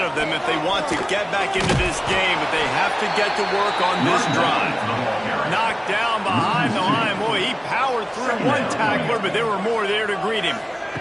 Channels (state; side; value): identical; both; correlation 1.00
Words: them if they want to get back into this game, but they have to get to work on this drive. Knocked down behind the line. Boy, he powered through one tackler, but there were more there to greet him.